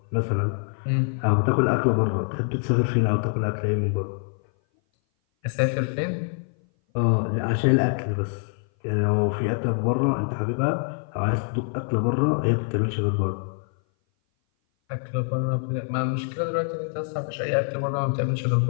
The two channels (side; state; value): right; silent; 58 dB below the other